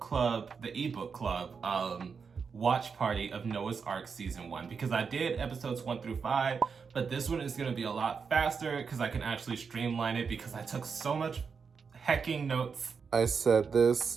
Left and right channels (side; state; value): left; quieter; 5.7 dB